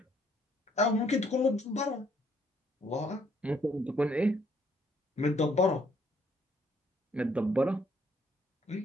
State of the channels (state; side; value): normal; both; correlation 0.67